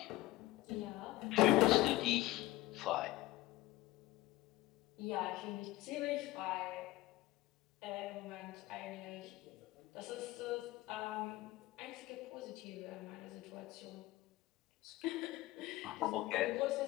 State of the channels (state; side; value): quieter; right; 17.7 dB